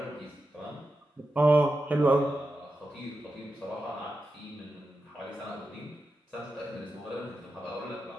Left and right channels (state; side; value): normal; both; correlation 0.90